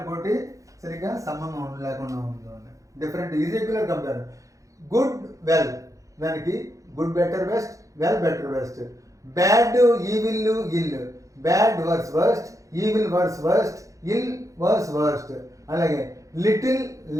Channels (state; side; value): late; left; 0.16 ms